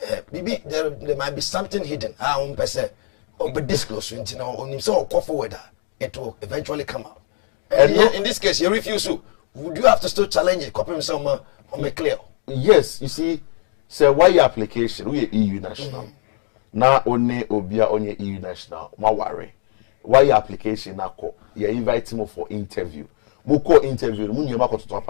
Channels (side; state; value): right; quieter; 38.4 dB